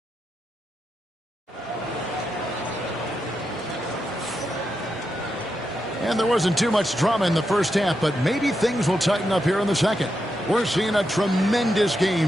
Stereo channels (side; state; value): both; normal; correlation 0.85